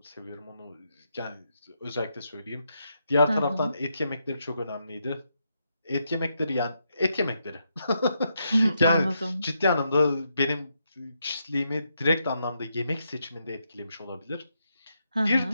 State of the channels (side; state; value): both; inverted; correlation -0.81